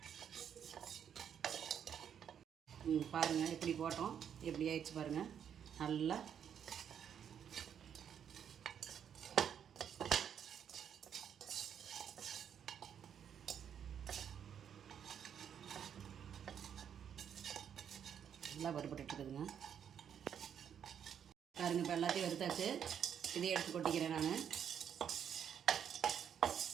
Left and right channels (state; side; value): quieter; left; 8.5 dB